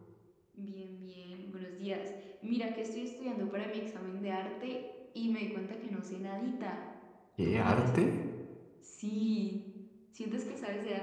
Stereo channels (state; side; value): identical; both; correlation 1.00